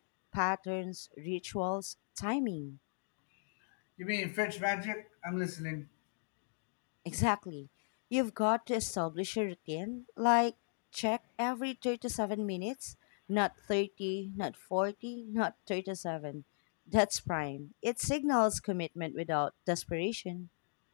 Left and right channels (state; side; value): silent; right; digital silence